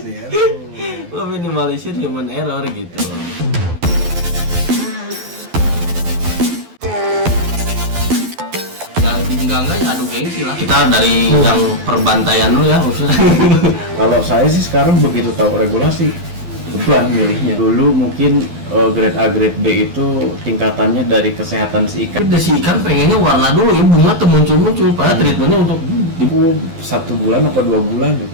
ya. Meminimalisir human error gitu. Enggak adu gengsi lah. Kita dari yang perbantaian dulu ya maksudnya. Kalau saya sih sekarang begitu tahu regulasi, beban milihnya. Dulu mungkin grade A, grade B itu tingkatannya dari kesehatan si ikan. Tapi si ikan pengennya warna dulu ya, bunga tuh muncul-muncul. Padahal treatmentnya untuk 1 bulan atau 2 bulan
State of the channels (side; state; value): left; late; 12 ms